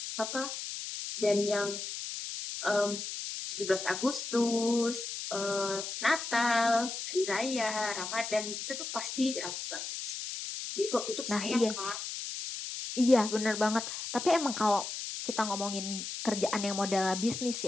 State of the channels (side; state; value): left; noise; hiss, 6 dB below the sound